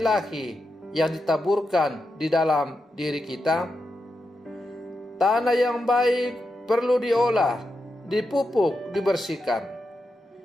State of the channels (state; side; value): normal; both; correlation 0.87